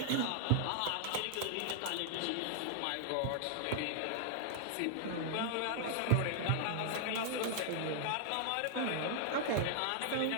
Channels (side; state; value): both; different; correlation -0.01